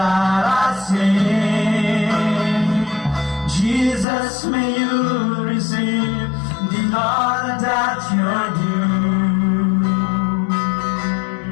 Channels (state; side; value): drops out; right; at 4.0 s